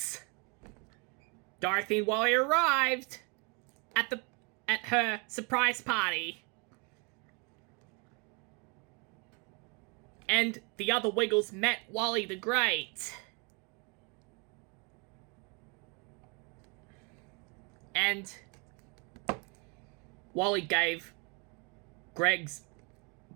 Dorothy and Wally arrived at her surprise party. And the other Wiggles met Wally the Great. And Wally gave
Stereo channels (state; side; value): quieter; left; 32.7 dB